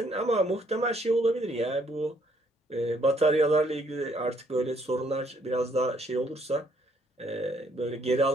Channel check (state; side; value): normal; both; correlation 0.67